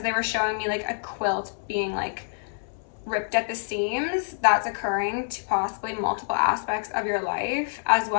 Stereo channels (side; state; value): right; silent; 61 dB below the other